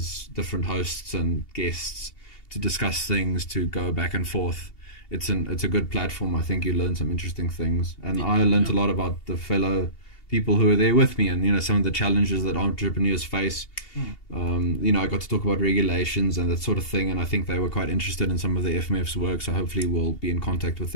different hosts and guests to discuss things, to go back and forth. It's a good platform. I think you learn some interesting things, and I learned a lot about the fellow people who are there with me, and some of the challenges that entrepreneurs face. I got to talk about regulations and that sort of thing, and I think they were quite interested in some of the FMF's work, so hopefully we'll be in contact with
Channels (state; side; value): late; right; 2.8 ms